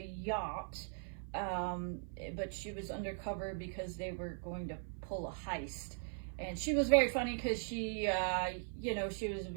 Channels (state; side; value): silent; left; 51 dB below the other